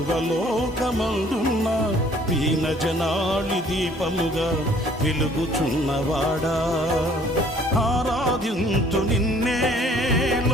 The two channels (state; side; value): normal; both; correlation 0.57